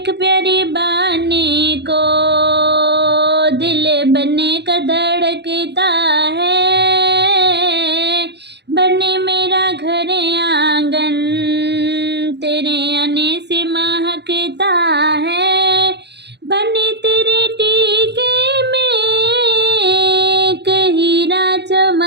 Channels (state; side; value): late; left; 0.50 ms